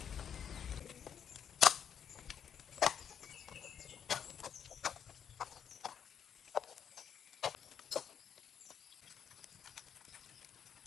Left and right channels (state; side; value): quieter; right; 8.2 dB